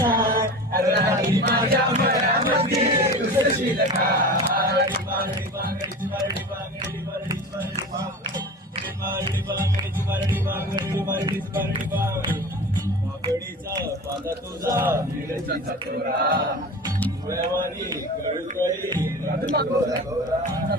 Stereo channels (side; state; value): both; normal; correlation 0.33